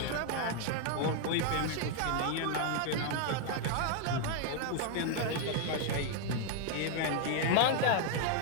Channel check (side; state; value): both; different; correlation 0.00